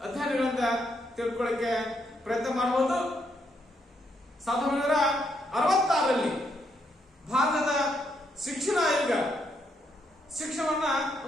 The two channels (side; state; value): both; normal; correlation 0.76